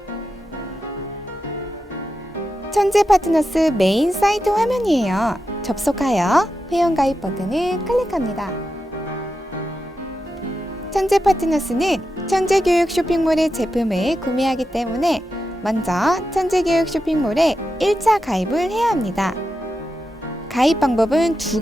천재 파트너스 메인 사이트 화면이에요. 접속하여 회원가입 버튼을 클릭합니다. 천재 파트너스는 천재교육 쇼핑몰의 제품을 구매하기 때문에 먼저 천재교육 쇼핑몰에 1차 가입을 해야 합니다. 가입 방법은 두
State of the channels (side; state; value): both; normal; correlation 0.89